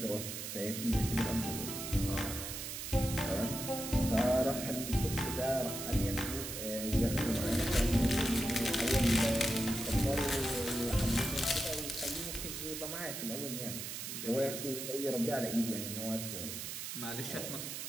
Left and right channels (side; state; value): right; noise; hiss, 6 dB below the sound